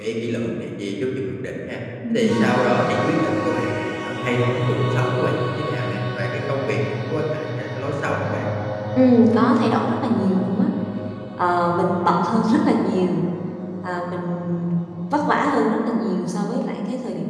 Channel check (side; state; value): both; identical; correlation 1.00